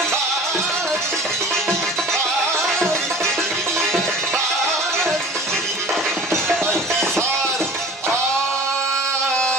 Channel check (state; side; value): normal; both; correlation 0.41